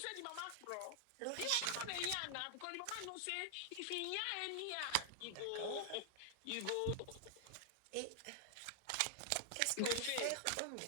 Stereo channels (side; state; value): both; different; correlation -0.01